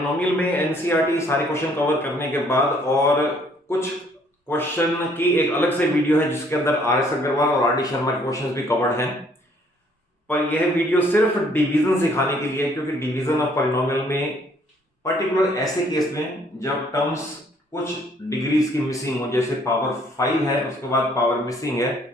में एनसीईआरटी सारे क्वेश्चन कवर करने के बाद और कुछ क्वेश्चन की एक अलग से वीडियो है जिसके अंदर आर एस अग्रवाल और आर डी शर्मा के क्वेश्चंस भी कवर्ड हैं। पर यह वीडियो सिर्फ डिवीजन सिखाने के लिए है, क्योंकि डिवीजन ऑफ पॉलिनोमियल में पर्टिकुलर ऐसे केस में जब टर्म्स कुछ डिग्रीज की मिसिंग हो, जैसे पावर 5 है उसके बाद पावर मिसिंग है,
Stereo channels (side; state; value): both; normal; correlation 0.62